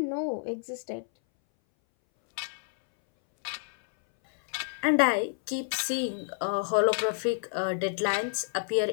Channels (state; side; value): silent; right; 59 dB below the other